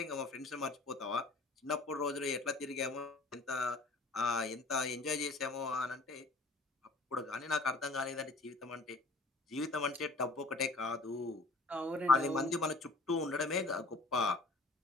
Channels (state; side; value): quieter; right; 3.2 dB